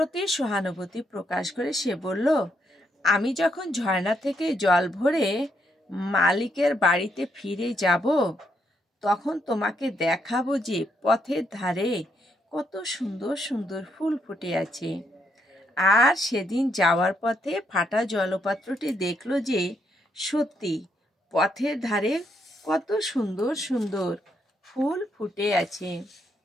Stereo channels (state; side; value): normal; both; correlation 0.77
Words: সহানুভূতি প্রকাশ করে সে বলল, আমি যখন ঝর্ণা থেকে জল ভরে মালিকের বাড়িতে ফিরে যাব, তখন তোমাকে দেখাবো যে পথের ধারে কত সুন্দর সুন্দর ফুল ফুটে আছে। আর সেদিন যাওয়ার পথে ফাটা জলপাত্রটি দেখলো যে সত্যি পথের ধারে কত সুন্দর সুন্দর ফুল ফুটে আছে।